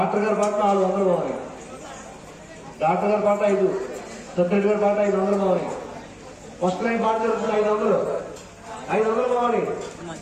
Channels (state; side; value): identical; both; correlation 1.00